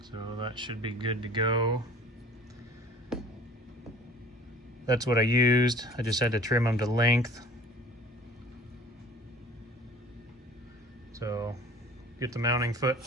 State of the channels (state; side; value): normal; both; correlation 0.48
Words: So that should be good to go. That's what I used. I just had to trim them to length. So get the mounting foot